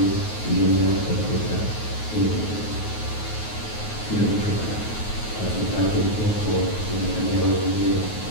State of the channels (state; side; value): late; right; 9.4 ms